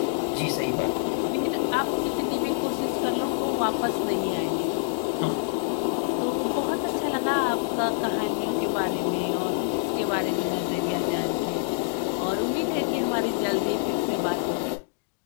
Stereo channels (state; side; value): silent; right; digital silence